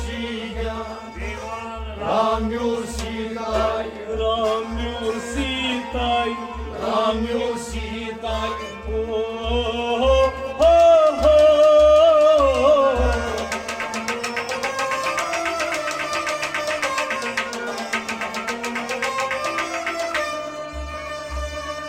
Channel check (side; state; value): both; identical; correlation 1.00